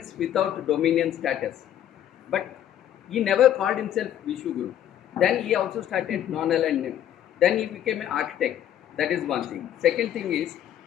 without dominion status. But he never called himself Vishwaguru. Then he also started non-aligned name. Then he became an architect. That is one thing. Second thing is,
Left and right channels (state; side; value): quieter; right; 11.0 dB